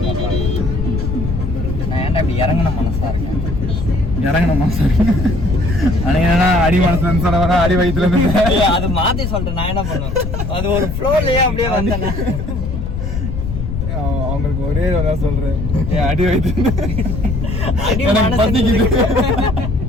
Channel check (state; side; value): noise; left; rumble, 4 dB below the sound